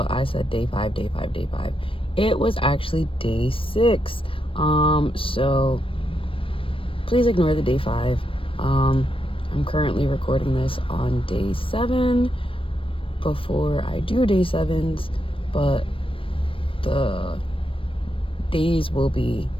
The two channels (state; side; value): late; right; 0.26 ms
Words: I said day 5, day 5, day 5. It was actually day 6. So please ignore the day 5. I'm currently recording this on day 7 before I do day 7s, but the days will be